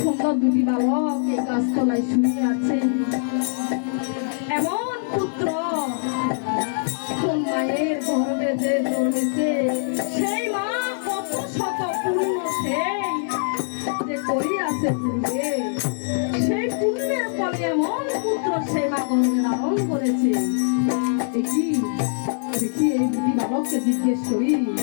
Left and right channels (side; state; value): right; silent; digital silence